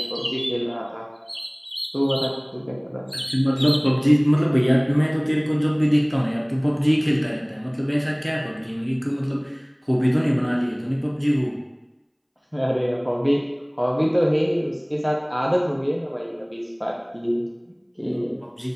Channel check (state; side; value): identical; both; correlation 1.00